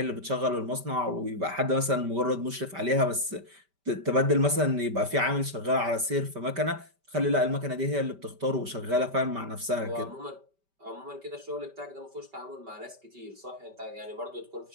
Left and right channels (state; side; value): late; left; 5.1 ms